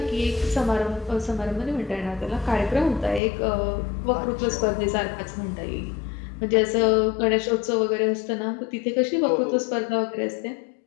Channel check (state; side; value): drops out; right; at 3.2 s